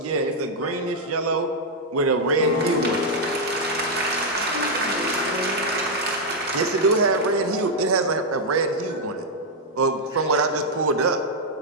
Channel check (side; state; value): both; normal; correlation -0.02